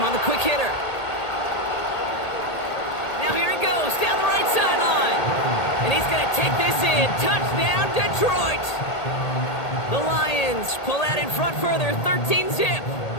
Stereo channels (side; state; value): right; late; 1.8 ms